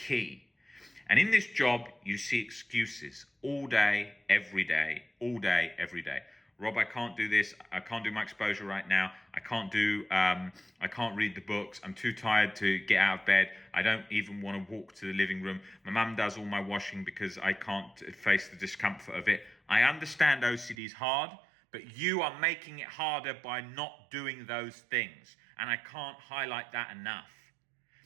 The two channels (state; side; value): drops out; left; at 20.8 s